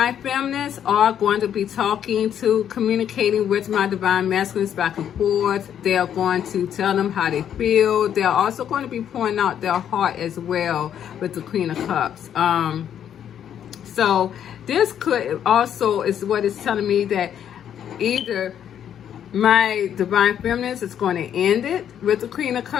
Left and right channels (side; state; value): right; quieter; 9.5 dB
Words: feminines are going to be communicating with my divine masculines back and forth. They are going to tell them how they feel. They are also going to be pouring out their heart as well with the Queen of Cups. So this could also is what it's telling me, that either my divine feminines is going to end it with the Queen of